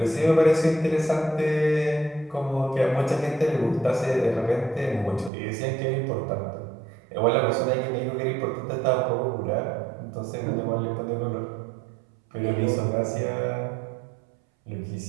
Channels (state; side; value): drops out; left; at 5.3 s